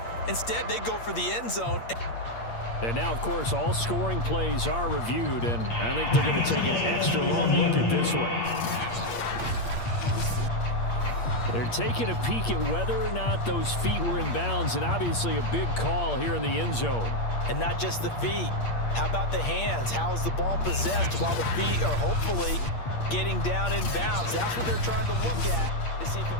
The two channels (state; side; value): late; right; 8.6 ms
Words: Instead, they go for the end zone. And now, of course, all scoring plays are reviewed, and I think they're going to take an extra long look at this one. They're taking a peek at whether or not those feet were in bounds, and obviously a big call here in the end zone. And not just the feet. How about the hands? How is the ball possessed while the feet are hopefully getting down in bounds? That's what they're trying to look at to see if